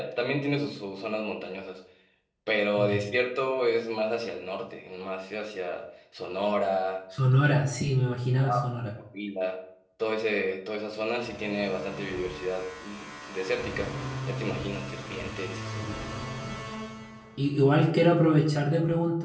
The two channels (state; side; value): identical; both; correlation 1.00